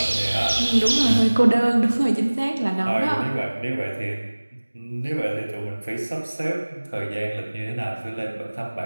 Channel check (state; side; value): inverted; both; correlation -1.00